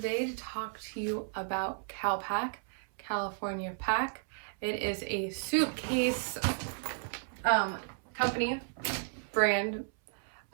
to talk to you about CALPAK, California Pack. It is a suitcase company, brand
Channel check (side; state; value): left; silent; 55 dB below the other